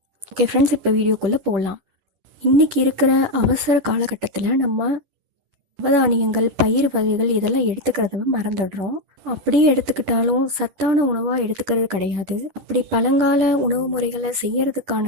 ஓகே ஃப்ரெண்ட்ஸ், இப்போ வீடியோக்குள்ளே போகலாம். இன்றைக்கி இருக்கிற அவசர காலகட்டத்தில் நம்ம நவதானியங்கள், பயிர் வகைகள் இதெல்லாம் எடுத்துக்கிறத மறந்துடுறோம். அப்படியே எடுத்துக்கிட்டாலும் சத்தான உணவாக எடுத்துக்கிறது கிடையாது. அப்படி பழங்கால உணவு முறைகளை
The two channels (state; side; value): late; left; 11 ms